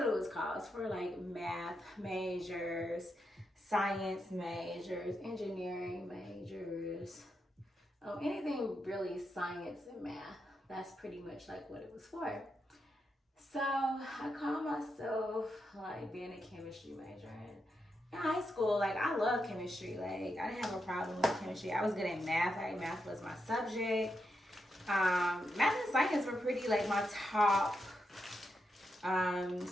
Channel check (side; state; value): both; normal; correlation 0.84